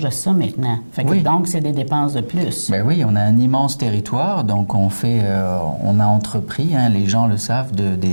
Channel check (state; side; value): inverted; both; correlation -1.00